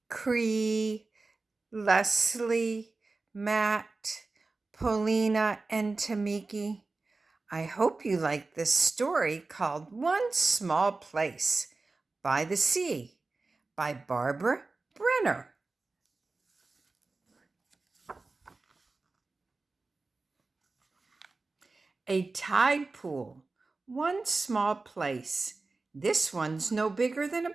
Cree, Leslie, Matt, Paulina, and Tamiki. I hope you like this story called One Small Place by the Sea by Barbara Brenner. A tide pool, one small place. This one's no bigger than a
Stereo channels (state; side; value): quieter; left; 3.6 dB